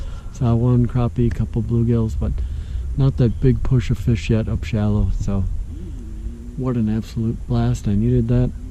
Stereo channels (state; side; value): identical; both; correlation 1.00